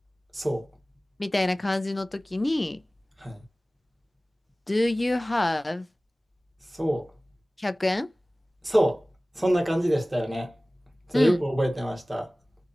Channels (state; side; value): normal; both; correlation 0.98